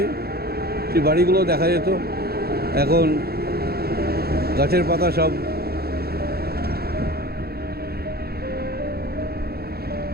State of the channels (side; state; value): left; late; 0.46 ms